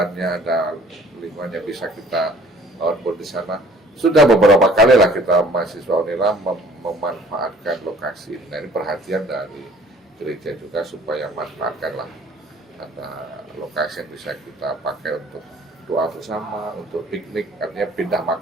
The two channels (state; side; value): normal; both; correlation 0.54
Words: ada lingkungannya, bisa kita outbound di sana. Sudah beberapa kali lah kita mahasiswa Unila memanfaatkan lokasi ini. Nah, ini perhatian dari gereja juga supaya manfaatkanlah ada lokasi yang bisa kita pakai untuk doa bersama, untuk piknik, artinya pindah